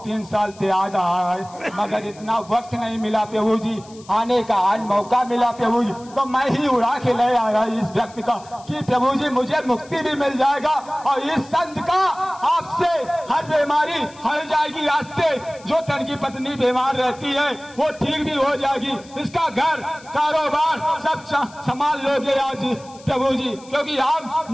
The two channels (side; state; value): left; noise; hiss, 23 dB below the sound